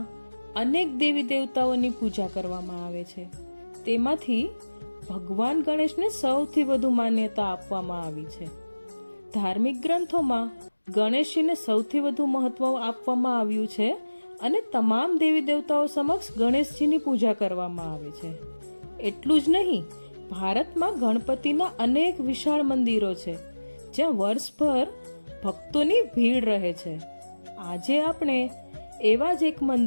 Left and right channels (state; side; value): inverted; both; correlation -1.00